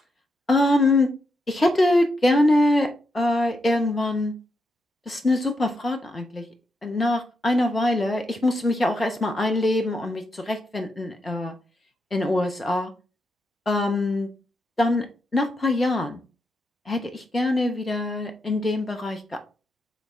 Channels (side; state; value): both; normal; correlation 0.82